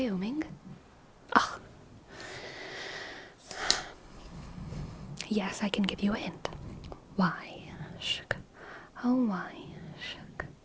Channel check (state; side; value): identical; both; correlation 1.00